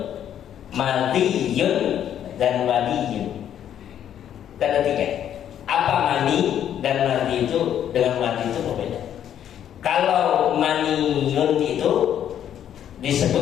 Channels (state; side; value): quieter; right; 10.1 dB